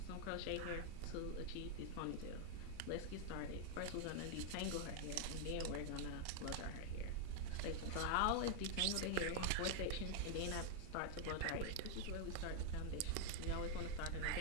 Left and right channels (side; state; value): both; different; correlation 0.00